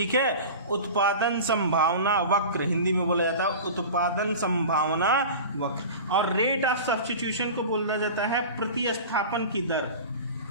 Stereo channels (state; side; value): inverted; both; correlation -0.34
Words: है। उत्पादन संभावना वक्र हिंदी में बोला जाता है उत्पादन संभावना वक्र। और रेट ऑफ सब्स्टिट्यूशन को बोला जाता है प्रतिस्थापन की दर,